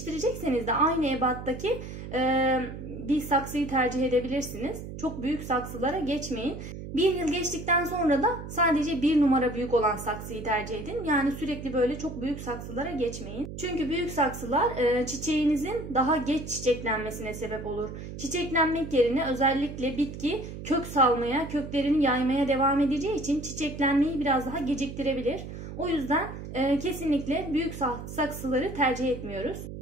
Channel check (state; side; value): noise; right; hum, 10 dB below the sound